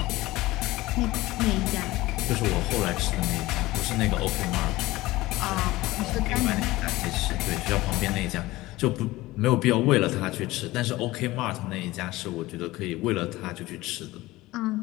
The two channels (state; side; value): quieter; right; 18.7 dB